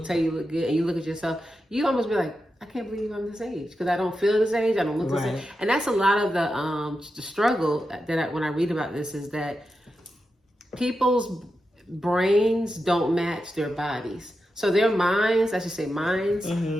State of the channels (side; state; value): both; normal; correlation 0.89